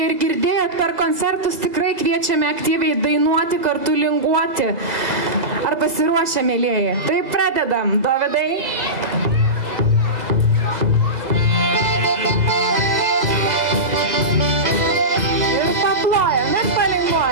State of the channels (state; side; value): late; left; 2.0 ms